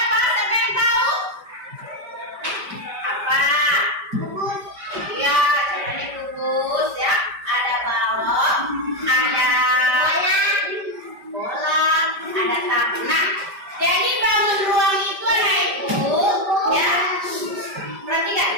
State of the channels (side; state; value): left; late; 5.1 ms